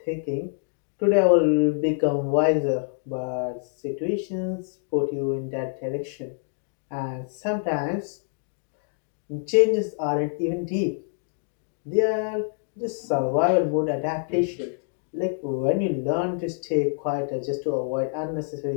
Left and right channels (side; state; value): right; silent; digital silence